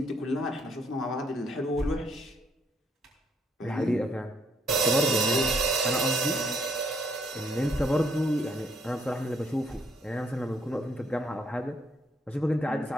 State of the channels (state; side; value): normal; both; correlation 0.70